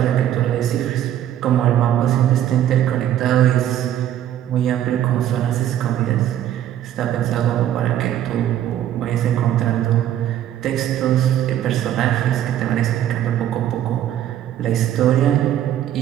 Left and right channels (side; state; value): left; quieter; 11.5 dB